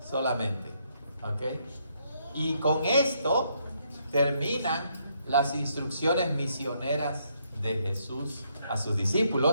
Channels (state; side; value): inverted; both; correlation -0.73